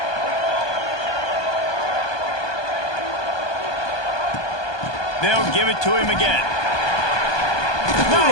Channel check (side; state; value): right; late; 1.2 ms